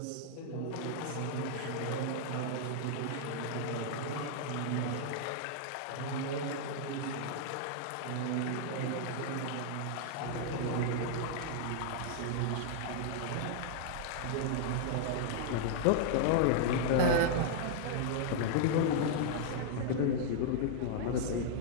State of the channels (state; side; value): different; both; correlation -0.01